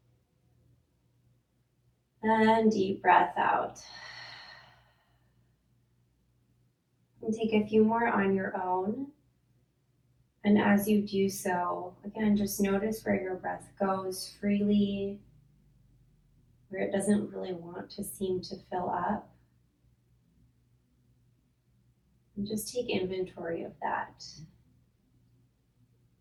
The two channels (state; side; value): identical; both; correlation 1.00